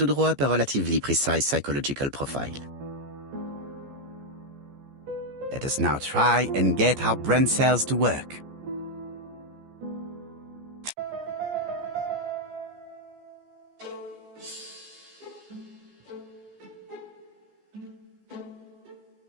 draw up a relatively precise psychological profile. Let us now try and get our brain cells to work.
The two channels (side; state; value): left; late; 14 ms